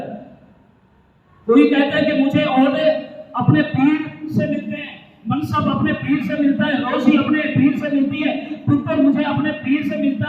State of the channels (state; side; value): identical; both; correlation 1.00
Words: کوئی کہتا ہے کہ مجھے عہدے اپنے پیر سے ملتے ہیں، منصب اپنے پیر سے ملتا ہے، روزی اپنے پیر سے ملتی ہے، پتر مجھے اپنے پیر سے